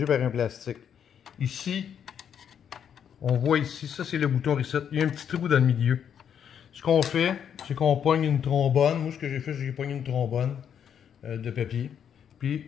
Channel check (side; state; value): right; quieter; 8.4 dB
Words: par un plastique. Ici, on voit ici, ça c'est le bouton reset, il y a un petit trou dans le milieu. Ce qu'on fait, c'est qu'on pogne une trombone. Moi, ce que j'ai fait, c'est que j'ai pogné une trombone de papier, puis